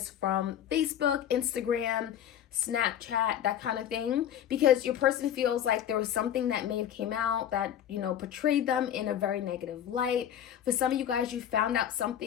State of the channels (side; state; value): right; quieter; 10.2 dB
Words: from Facebook, Instagram, Snapchat, that kind of thing, because your person feels like there was something that may have came out that, you know, portrayed them in a very negative light. For some of you guys, you found out